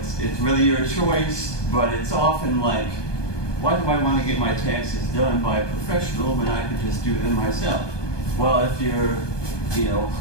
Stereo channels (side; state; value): right; late; 1.2 ms